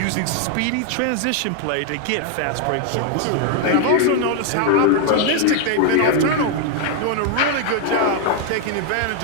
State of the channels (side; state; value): both; different; correlation 0.00